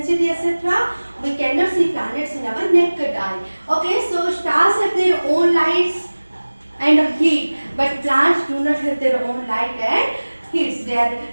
etc. We cannot see planets in our naked eye. Okay, so stars have their own lights and heat, but planets do not have their own light and heat. They are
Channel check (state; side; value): inverted; both; correlation -1.00